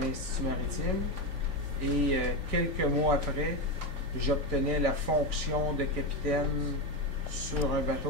maritime. Et quelques mois après, j'obtenais la fonction de capitaine sur un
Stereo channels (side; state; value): left; late; 3.5 ms